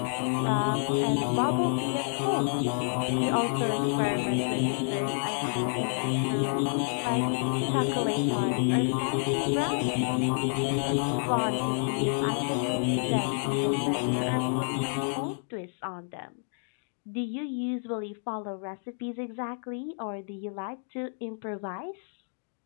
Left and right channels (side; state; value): right; silent; digital silence